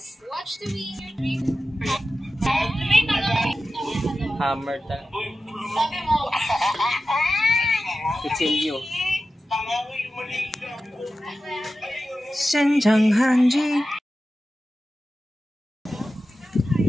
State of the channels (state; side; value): normal; both; correlation 0.93